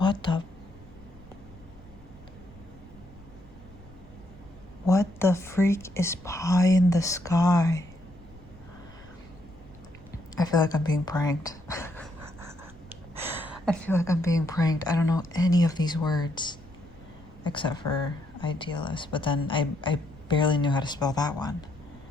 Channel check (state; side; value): noise; left; rumble, 24 dB below the sound